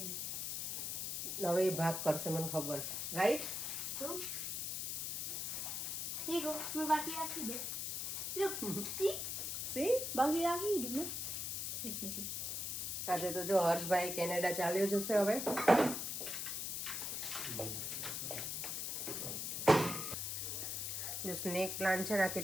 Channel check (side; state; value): left; noise; hiss, 2 dB below the sound